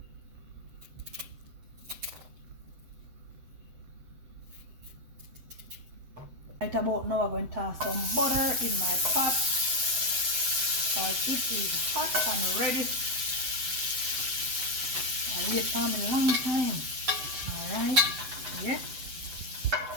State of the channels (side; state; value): left; late; 7.9 ms